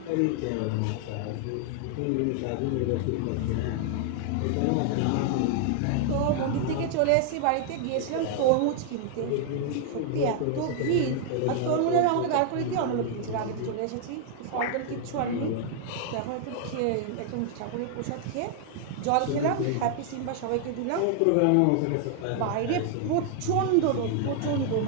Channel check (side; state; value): both; different; correlation 0.00